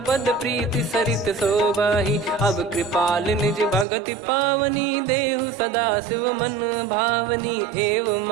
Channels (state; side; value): drops out; left; at 3.9 s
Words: पद प्रीति सरित शोभाही। अब कृपाल निज भगति पावनी, देहु सदा शिव मन भावनी। एव